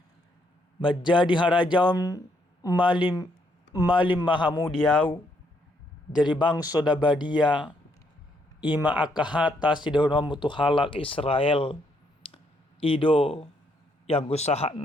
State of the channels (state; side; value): normal; both; correlation 0.73